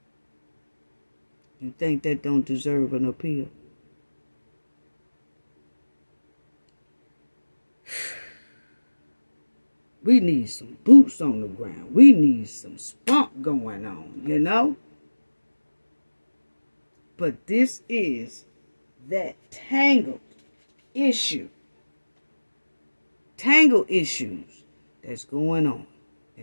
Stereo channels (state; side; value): inverted; both; correlation -1.00